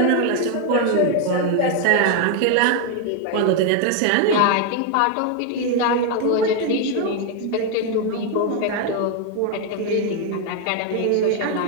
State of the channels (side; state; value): both; different; correlation 0.01